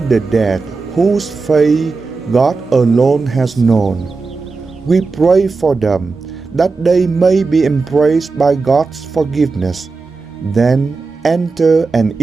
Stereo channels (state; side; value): quieter; left; 4.2 dB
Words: dead whose fate God alone has known. We pray for them, that they may be embraced by God's forgiveness, then enter and